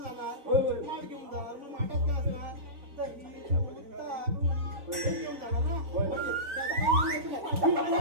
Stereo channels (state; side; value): late; left; 3.9 ms